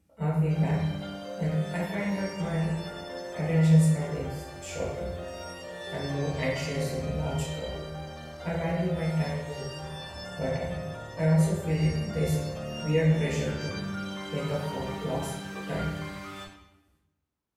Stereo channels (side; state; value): both; identical; correlation 1.00